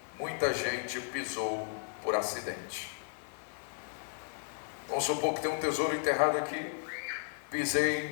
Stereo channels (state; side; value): silent; right; 55 dB below the other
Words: muita gente pisou por acidente. Vamos supor que tem um tesouro enterrado aqui,